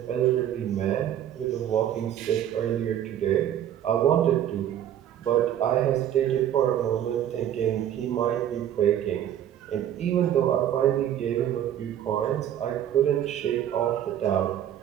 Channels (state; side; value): quieter; left; 10.8 dB